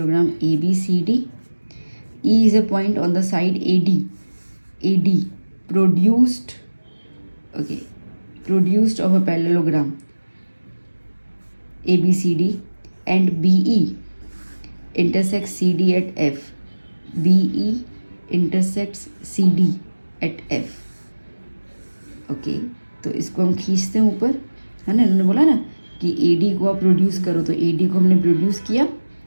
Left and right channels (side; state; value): both; inverted; correlation -1.00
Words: ABCD. E is a point on the side AD produced of a parallelogram ABCD and BE intersects CD at F. BE intersects CD at F. Okay, तो इसको हम खींचते हैं ऊपर, है ना। इन्होंने बोला ना कि AD को आप प्रोड्यूस करो, तो AD को हमने प्रोड्यूस किया